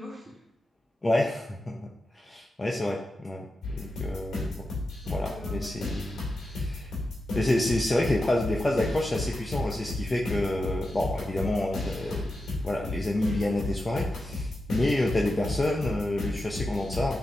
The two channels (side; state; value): both; normal; correlation 0.90